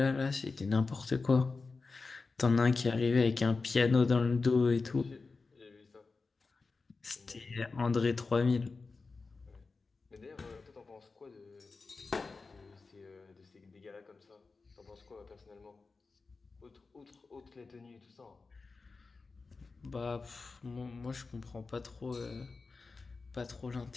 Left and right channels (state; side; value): quieter; right; 4.1 dB